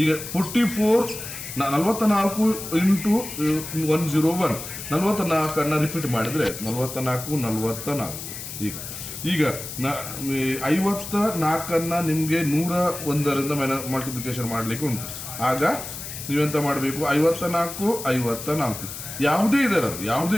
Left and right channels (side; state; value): left; noise; hiss, 9 dB below the sound